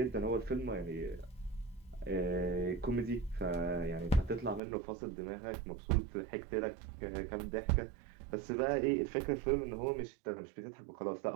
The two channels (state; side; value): drops out; left; at 4.6 s